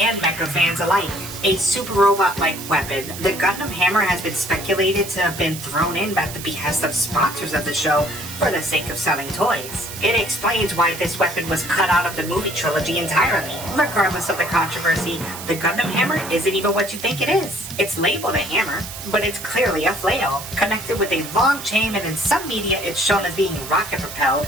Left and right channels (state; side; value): noise; right; hiss, 11 dB below the sound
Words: mecha fans alike. A super robot-like weapon, the Gundam Hammer has been speculated to have been thrown in at the behest of sponsors of the show for the sake of selling toys. It explains why this weapon was cut out of the movie trilogy entirely. Regardless of the controversy, the Gundam Hammer isn't even what you think it is. It's labeled a hammer, but it's clearly a flail, connected with a long chain, and in some media it's shown as being rocket-propelled.